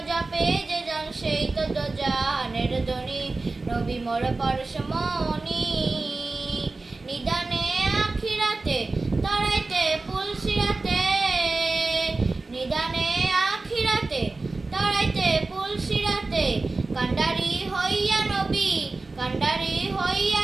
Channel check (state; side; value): quieter; left; 3.5 dB